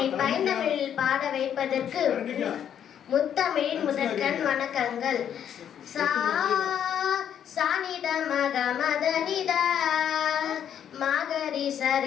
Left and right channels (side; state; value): right; quieter; 9.3 dB